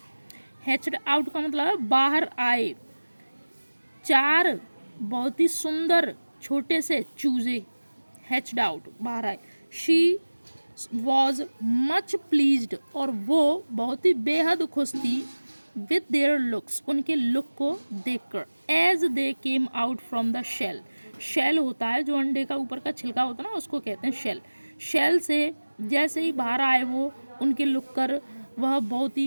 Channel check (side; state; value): both; inverted; correlation -1.00